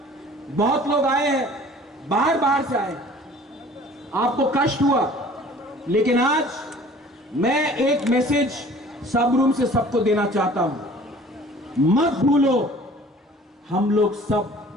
बहुत लोग आए हैं, बाहर से आए, आपको कष्ट हुआ, लेकिन आज मैं एक मैसेज सब रूम से सबको देना चाहता हूं। मत भूलो, हम लोग सब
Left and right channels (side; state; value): both; normal; correlation 0.49